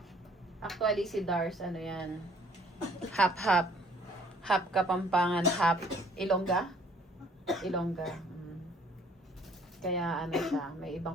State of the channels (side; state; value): both; normal; correlation 0.59